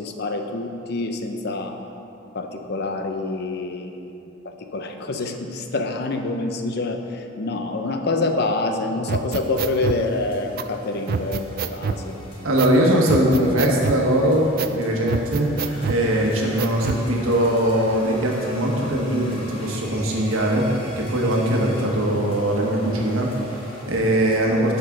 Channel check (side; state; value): both; normal; correlation 0.32